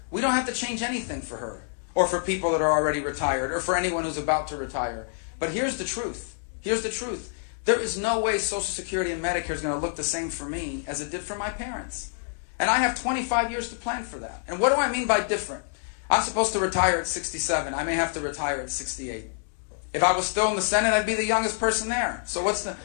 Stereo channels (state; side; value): silent; right; digital silence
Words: we don't have to change anything for her or for people that are already retired or for anyone who's about to retire. But here's the truth. Here's the truth. There is no way Social Security and Medicare is going to look the same for me as it did for my parents. And I have 25 years to plan for that. And what do I mean by different? I'm supposed to retire at 67. I may have to retire at 68. If I was still in the Senate, I'd be the youngest person there. So what's the...